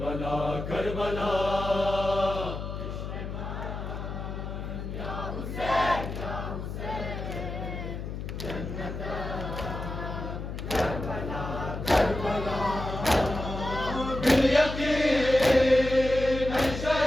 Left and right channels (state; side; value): noise; left; hum, 6 dB below the sound